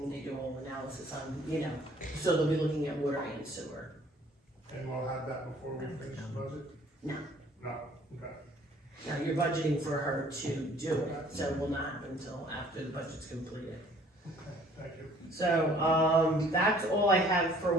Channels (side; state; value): both; normal; correlation 0.56